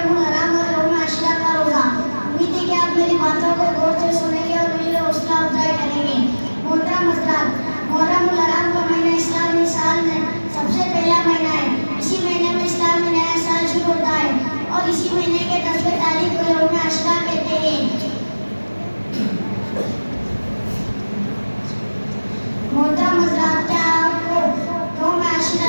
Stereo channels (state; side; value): inverted; both; correlation -1.00